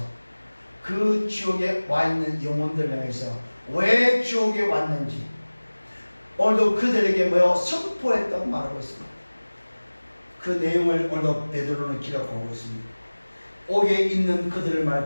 그 지옥에 와 있는 영혼들 향해서 왜 지옥에 왔는지 오늘도 그들에게 뭐요? 선포했다고 말하고 있습니다. 그 내용을 오늘도 베드로는 기록하고 있습니다. 옥에 있는 그들을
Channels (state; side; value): inverted; both; correlation -1.00